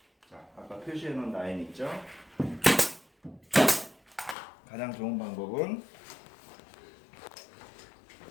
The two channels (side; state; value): right; drops out; at 4.4 s